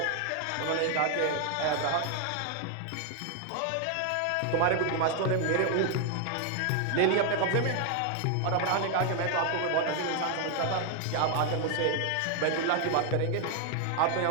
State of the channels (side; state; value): both; different; correlation 0.00